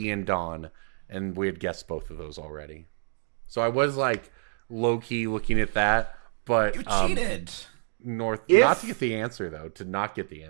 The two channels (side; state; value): left; silent; digital silence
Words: and Dawn, and we had guessed both of those already. So I was like low key looking at that, but you cheated. Not to get the answer though. To not get the